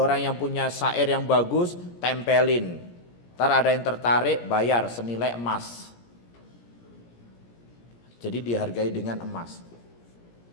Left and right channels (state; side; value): late; right; 17 ms